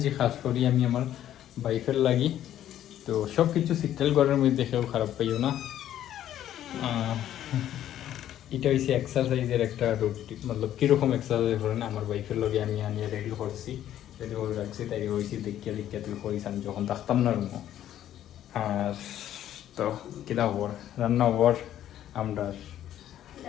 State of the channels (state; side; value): quieter; right; 11.7 dB